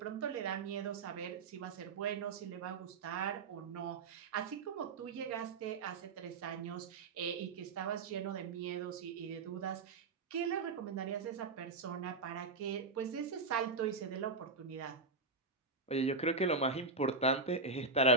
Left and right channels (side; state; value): left; quieter; 3.8 dB